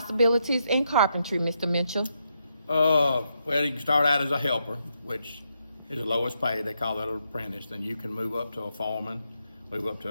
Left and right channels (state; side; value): inverted; both; correlation -0.80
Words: in carpentry, Mr. Mitchell? Well, you can start out as a helper, which is the lowest pay. They call that an apprentice. Then you can move up to a foreman, move up to